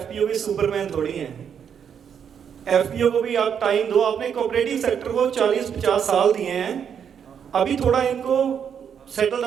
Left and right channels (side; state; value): left; quieter; 7.8 dB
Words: भी सुपरमैन थोड़ी हैं। एफपीओ को भी आप टाइम दो, आपने कोऑपरेटिव सेक्टर को 40-50 साल दिए हैं, अभी थोड़ा इनको सेटल